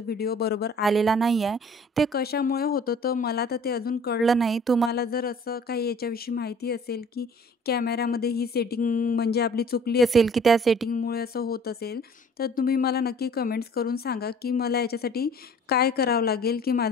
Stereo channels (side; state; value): both; normal; correlation 0.51